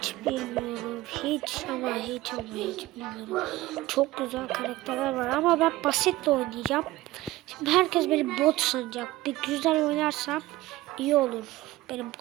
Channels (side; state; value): left; quieter; 17.5 dB